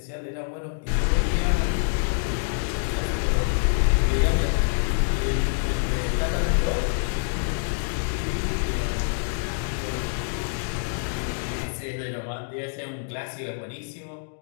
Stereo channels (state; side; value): silent; right; digital silence